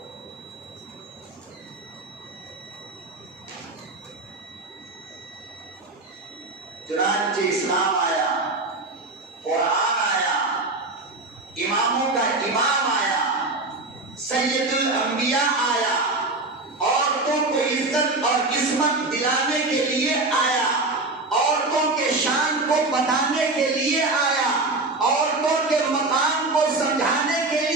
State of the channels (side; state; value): left; quieter; 3.1 dB